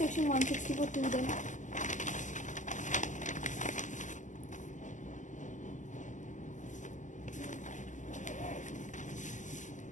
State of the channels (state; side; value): late; right; 0.37 ms